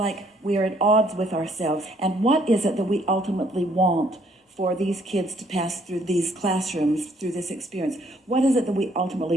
we are at odds with ourselves. And what is it that we ultimately want for these kids to pass through these classrooms, through this experience? What is it that we ultimately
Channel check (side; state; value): both; normal; correlation 0.66